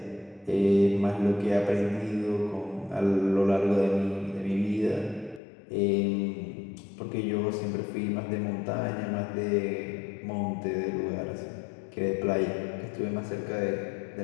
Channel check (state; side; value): drops out; right; at 5.4 s